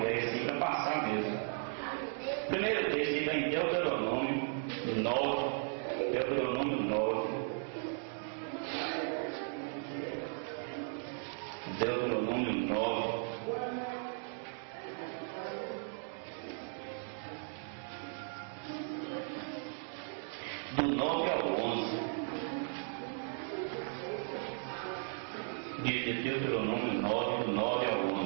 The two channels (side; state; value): left; silent; 54 dB below the other